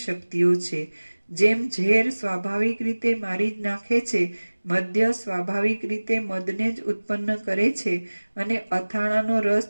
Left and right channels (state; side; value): inverted; both; correlation -1.00